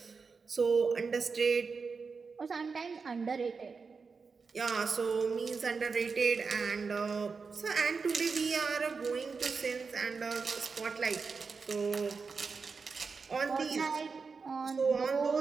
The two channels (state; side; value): quieter; left; 4.9 dB